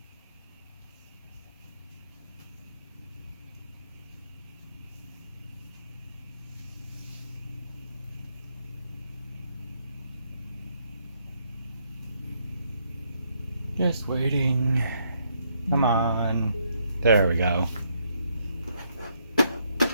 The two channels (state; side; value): inverted; both; correlation -0.74